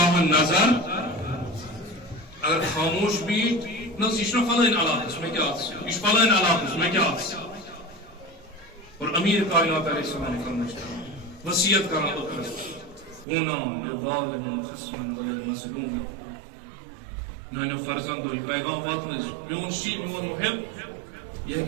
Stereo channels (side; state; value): left; drops out; at 13.2 s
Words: نظر اگر خاموش بیت نس یہ فلن علاقس میں کیا یہ فلن علاقس میں کیا اور امیر کائنات علیہ السلام فرمائشتا وصیت کرنا ہونا للظالم خصما وللمظلوم نانو فرزندو یہ پیغام واتنز میون شیء میون محب یہ